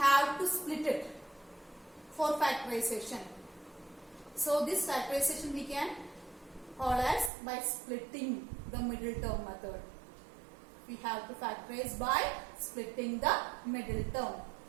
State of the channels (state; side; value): drops out; left; at 7.3 s